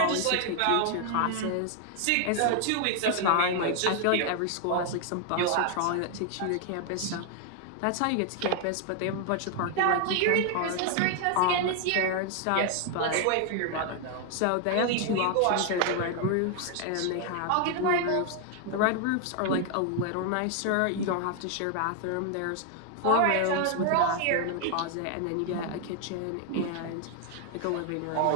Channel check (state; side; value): different; both; correlation 0.00